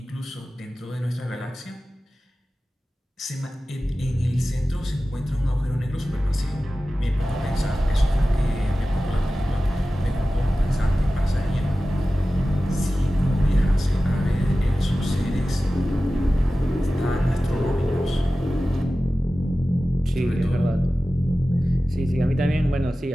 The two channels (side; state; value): both; normal; correlation 0.95